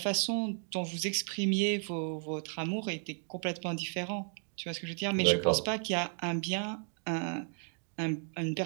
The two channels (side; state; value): left; silent; 55 dB below the other